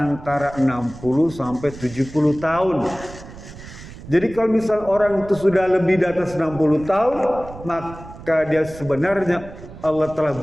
60 sampai 70 tahun. Jadi kalau misal orang itu sudah lebih di atas 60 tahun, maka dia sebenarnya Allah telah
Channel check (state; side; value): noise; right; rumble, 16 dB below the sound